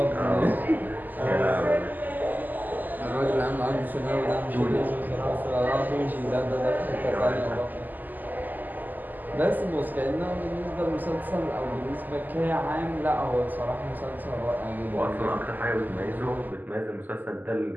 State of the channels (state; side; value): late; left; 0.085 ms